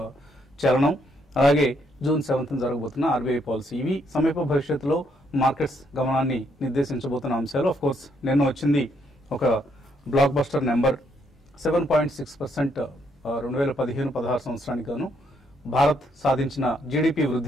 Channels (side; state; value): both; normal; correlation 0.73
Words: చలనం, అలాగే జూన్ 7th జరగబోతున్న ఆర్బీఐ పాలసీ, ఇవి సమీప భవిష్యత్తులో మార్కెట్స్ గమనాన్ని నిర్దేశించబోతున్న అంశాలు. ఆఫ్ కోర్స్ నిన్న వచ్చింది ఒక బ్లాక్ బస్టర్ నెంబర్, 7.6% 2015-16 సంవత్సరానికి గాను భారత్ సాధించిన జీడిపి